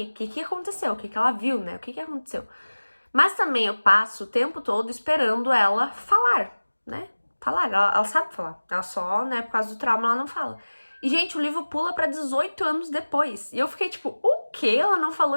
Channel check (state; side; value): inverted; both; correlation -1.00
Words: aconteceu, o que ela viu, né? O que aconteceu. Mas também eu passo o tempo todo esperando ela falar, né? Falar, ela sabe falar. Ela só, né, por causa do trauma, ela não fala. E, gente, o livro pula pra 18 anos depois. E eu fiquei tipo, o que? Ela não falou